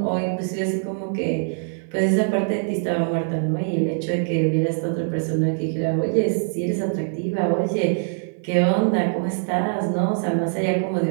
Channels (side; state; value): left; silent; 58 dB below the other